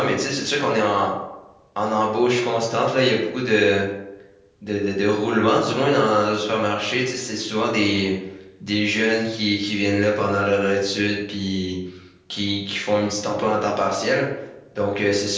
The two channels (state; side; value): identical; both; correlation 1.00